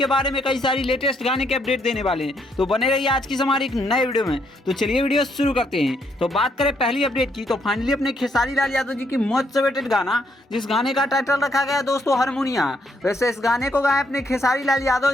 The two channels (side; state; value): both; normal; correlation 0.73